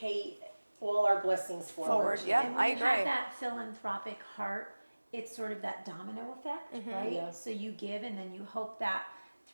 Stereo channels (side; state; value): both; inverted; correlation -1.00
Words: all our blessings forward. Yeah. And when I you agree. have that philanthropic heart, it's sort of that domino effect, right? Yeah. So you give, and then you hope that